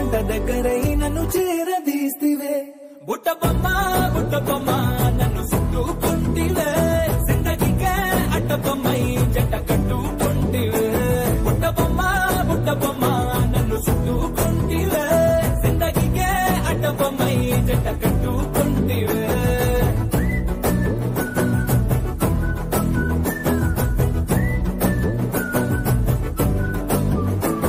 దగ్గరై నన్ను చేరదీస్తివే. బుట్ట బొమ్మ నన్ను చుట్టుకుంటివే, జిందగీకే అట్ట బొమ్మై జంట కట్టుకుంటివే. బుట్ట బొమ్మ నన్ను చుట్టుకుంటివే, జిందగీకే అట్ట బొమ్మై జంట కట్టుకుంటివే.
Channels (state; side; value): identical; both; correlation 1.00